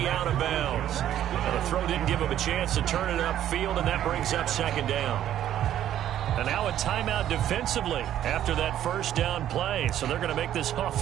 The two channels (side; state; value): left; quieter; 11.5 dB